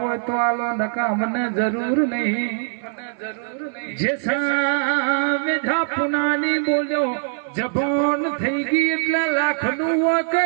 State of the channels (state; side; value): silent; left; 57 dB below the other